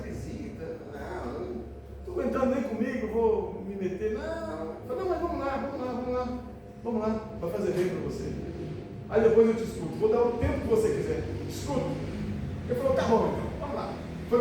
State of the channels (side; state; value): both; identical; correlation 1.00